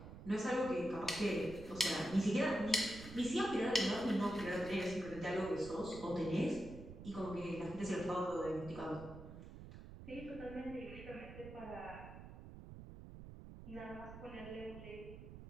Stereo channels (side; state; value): right; noise; rumble, 13 dB below the sound